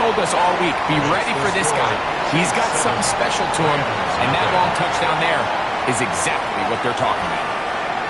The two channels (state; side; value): identical; both; correlation 1.00